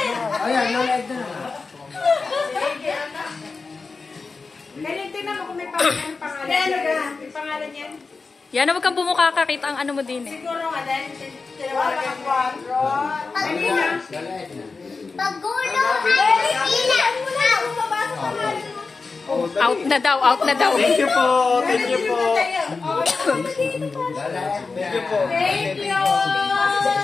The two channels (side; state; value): right; quieter; 4.3 dB